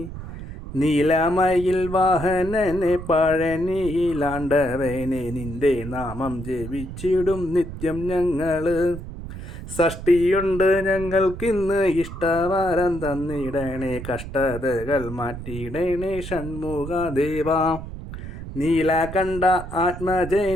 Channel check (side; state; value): right; noise; rumble, 10 dB below the sound